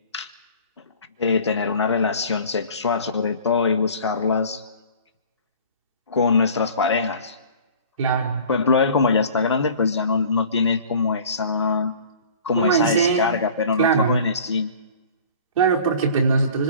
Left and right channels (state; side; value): inverted; both; correlation -0.45